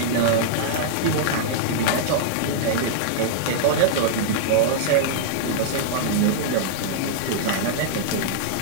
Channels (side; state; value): both; different; correlation -0.02